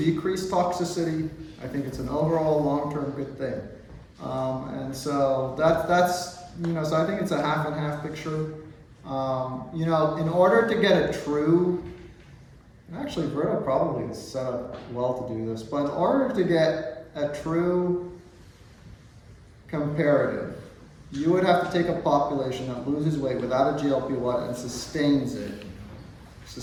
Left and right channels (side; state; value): both; identical; correlation 1.00